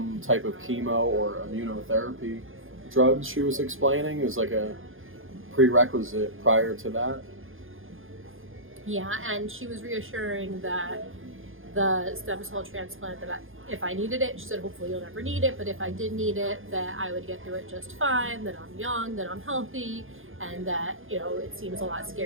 type of chemo or immunotherapy drugs. She was explaining is like a prerequisite prior to that. Yeah, and she was reassuring that the stem cell transplant, that if I needed it, she said hopefully you'll never need it, but if I did need it, that I would get through it just fine, that I'm young, that I'm healthy, and that, you know, it seems a lot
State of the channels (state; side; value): late; left; 0.59 ms